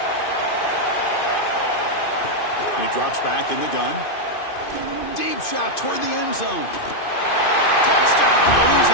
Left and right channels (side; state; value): right; late; 2.5 ms